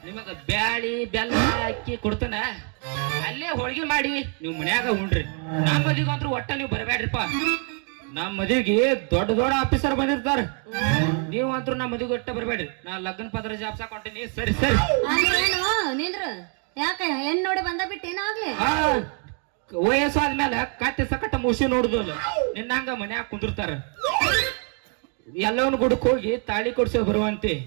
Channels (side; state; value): left; quieter; 39.7 dB